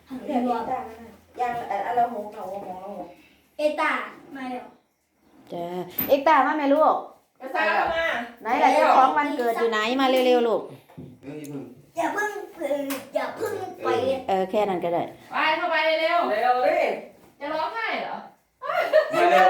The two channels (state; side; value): identical; both; correlation 1.00